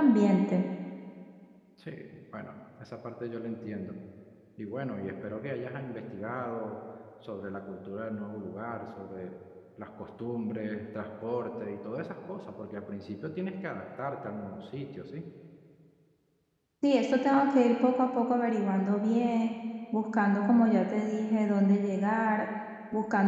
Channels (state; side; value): identical; both; correlation 1.00